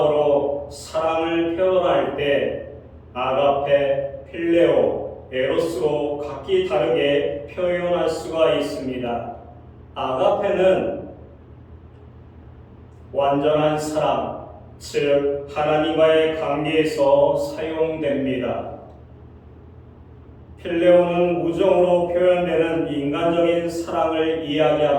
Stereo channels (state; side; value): identical; both; correlation 1.00